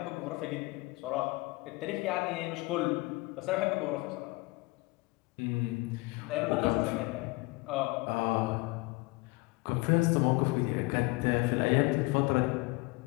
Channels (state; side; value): quieter; right; 24.1 dB